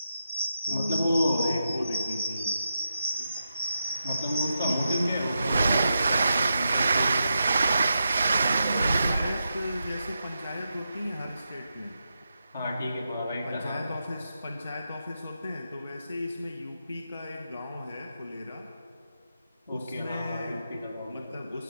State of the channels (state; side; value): inverted; both; correlation -0.87